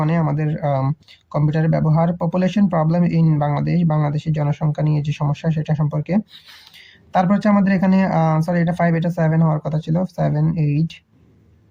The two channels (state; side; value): identical; both; correlation 1.00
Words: আমাদের কম্পিউটারের ব্যবহার। পপুলেশন প্রবলেম ইন বাংলাদেশের জনসংখ্যা নিয়ে যে সমস্যা সেটা সম্পর্কে। তারপর হচ্ছে আমাদের এখানে সরি এটা 5, এটা 7 হওয়ার কথা ছিল, 7, 8,